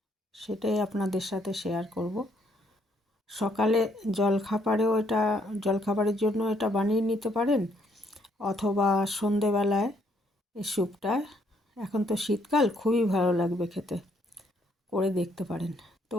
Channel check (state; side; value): normal; both; correlation 0.70